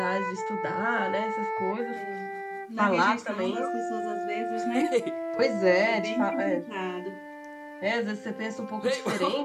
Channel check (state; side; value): identical; both; correlation 1.00